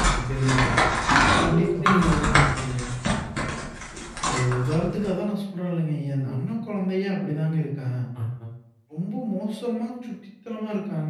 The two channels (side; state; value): both; identical; correlation 1.00